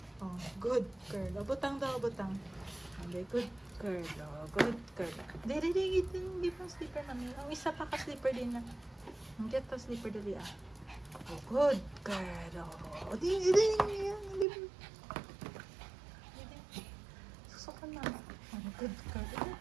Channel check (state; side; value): drops out; left; at 14.5 s